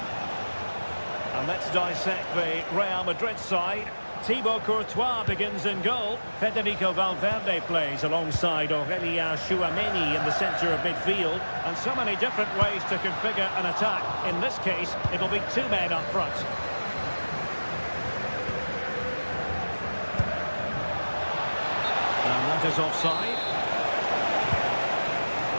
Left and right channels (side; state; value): both; inverted; correlation -1.00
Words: And let's dissect the Real Madrid side. Thibaut Courtois begins in goal. Federico Valverde plays alongside Aurélien Tchouaméni in the centre of midfield. And so many different ways to configure an attack. In this case, it'll be two men up front. And that is offside.